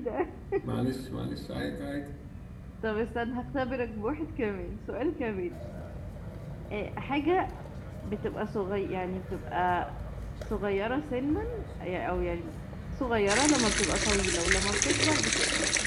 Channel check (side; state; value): both; identical; correlation 1.00